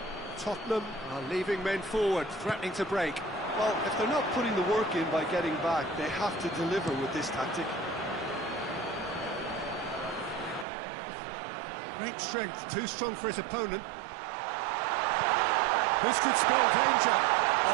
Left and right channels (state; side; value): drops out; left; at 10.7 s